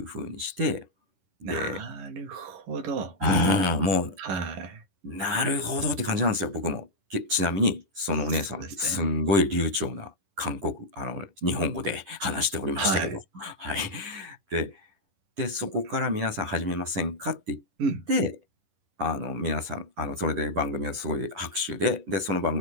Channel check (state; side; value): late; left; 11 ms